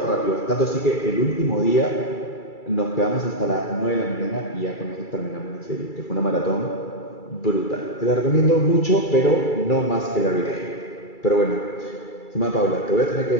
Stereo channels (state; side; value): late; right; 2.3 ms